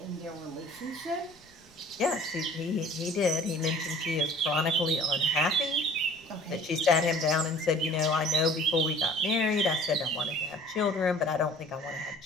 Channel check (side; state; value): left; noise; rumble, 30 dB below the sound